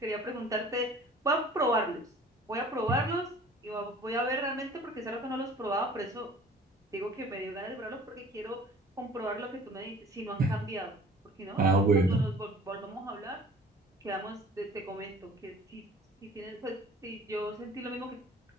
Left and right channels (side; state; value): both; normal; correlation 0.48